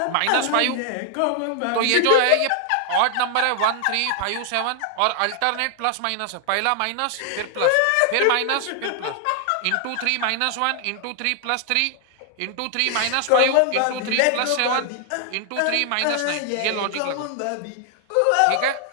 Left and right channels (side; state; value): both; different; correlation 0.00